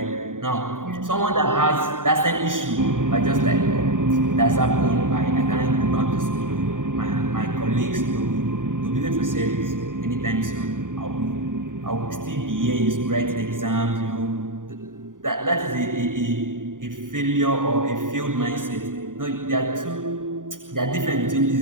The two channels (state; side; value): late; left; 0.89 ms